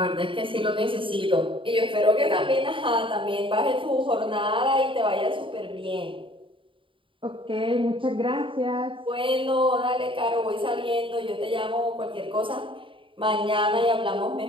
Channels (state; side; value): late; left; 0.25 ms